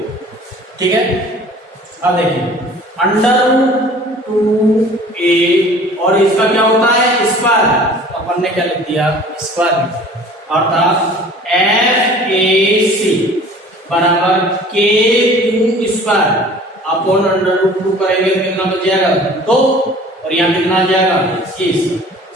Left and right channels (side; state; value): both; normal; correlation 0.47